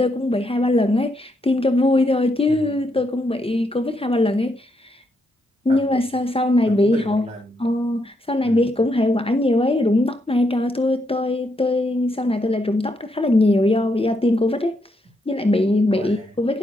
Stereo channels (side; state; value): both; normal; correlation 0.78